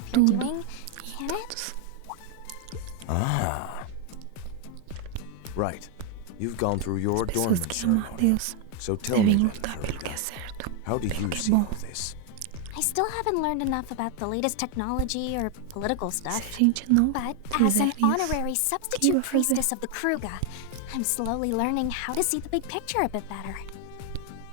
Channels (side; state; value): both; different; correlation 0.01